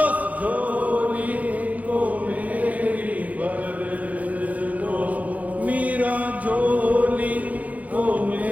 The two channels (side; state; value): left; late; 0.074 ms